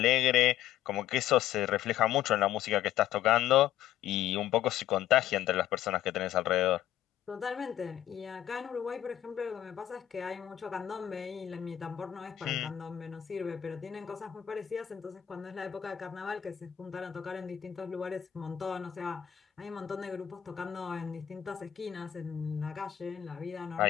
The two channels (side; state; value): right; quieter; 11.5 dB